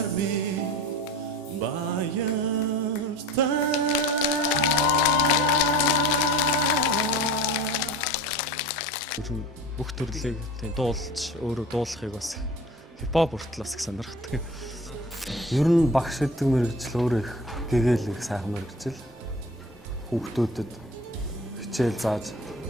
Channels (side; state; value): both; normal; correlation 0.38